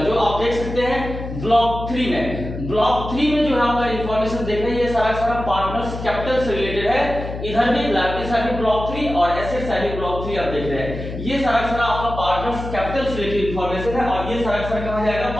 आप देख सकते हैं ब्लॉक 3 में, ब्लॉक 3 में जो है आपका इंफॉर्मेशन देख रहे हैं, ये सारा पार्टनर्स कैपिटल से रिलेटेड है। इधर भी लायबिलिटी साइड में ब्लॉक 3 और एसेट साइड में ब्लॉक 3 आप देख रहे हैं, ये सारा आपका पार्टनर्स कैपिटल से रिलेटेड इंफॉर्मेशन है, और ये सारा कहां जाएगा,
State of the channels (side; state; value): left; noise; hum, 8 dB below the sound